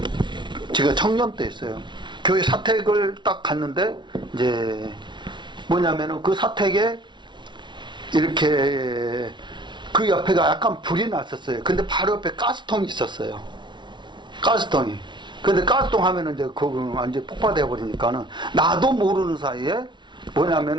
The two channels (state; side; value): late; left; 0.23 ms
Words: 제가 청년 때 있어요. 교회 사택을 딱 갔는데, 이제 뭐냐면은 그 사택에 이렇게 그 옆에가 약간 불이 났었어요. 근데 바로 옆에 가스통이 있었어요. 가스통이. 근데 가스통 하면은 이제 그거 완전 폭파되어 버리니까는, 나도 모르는 사이에